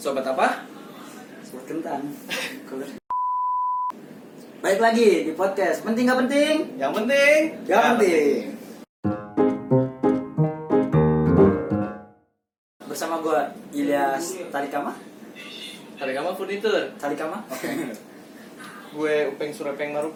apa? Sobat kentang. Baik lagi di podcast Penting Gak Penting? Yang penting Gak penting. Bersama gue Ilyas Tarikama. Tarikama Furnitur. Tarikama? Gue Upeng Surepeng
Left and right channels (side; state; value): both; identical; correlation 1.00